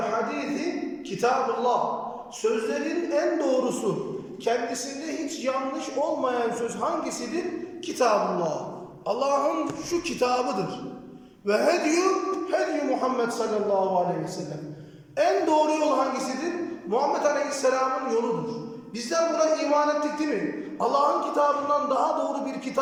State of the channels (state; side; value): identical; both; correlation 1.00